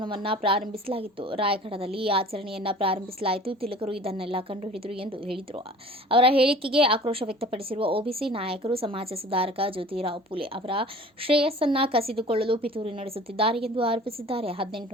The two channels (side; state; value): both; normal; correlation 0.44